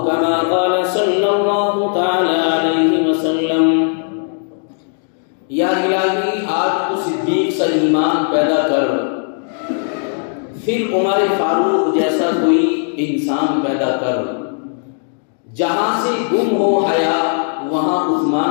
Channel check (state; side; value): silent; right; 61 dB below the other